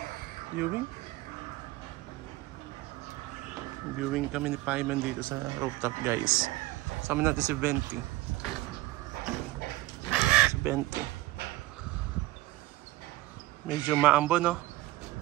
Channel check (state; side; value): quieter; left; 18.2 dB